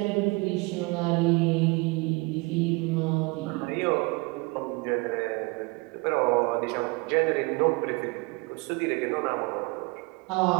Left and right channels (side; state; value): left; quieter; 26.4 dB